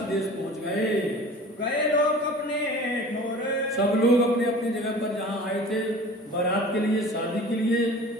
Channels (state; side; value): normal; both; correlation 0.42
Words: देश पहुंच गए लोग अपने ठोर, सब लोग अपने अपनी जगह पर जहाँ आए थे बारात के लिए, शादी के लिए,